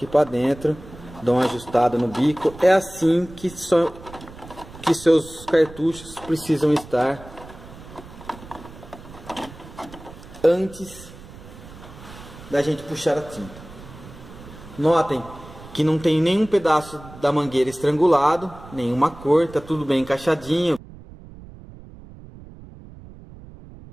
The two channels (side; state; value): right; noise; rumble, 17 dB below the sound